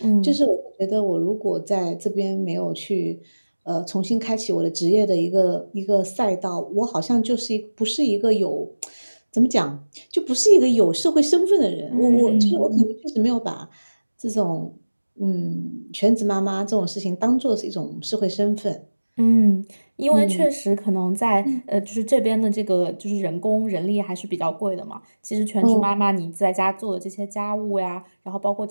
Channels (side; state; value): both; inverted; correlation -1.00